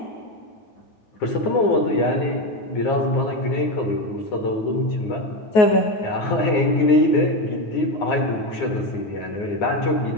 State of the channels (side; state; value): right; late; 9.4 ms